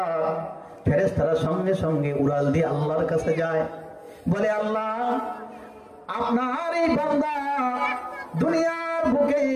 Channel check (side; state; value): both; identical; correlation 1.00